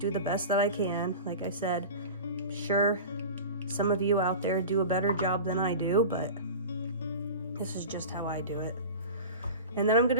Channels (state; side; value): inverted; both; correlation -0.34